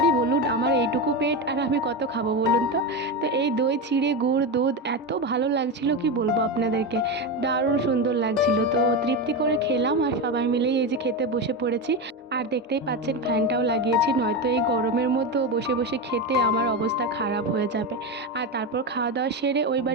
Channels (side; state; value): both; normal; correlation 0.16